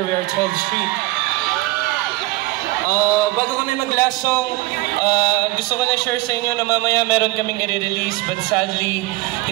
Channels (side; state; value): left; quieter; 20.1 dB